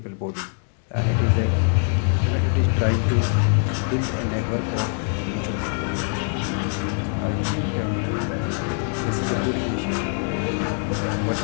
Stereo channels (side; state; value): right; silent; 55 dB below the other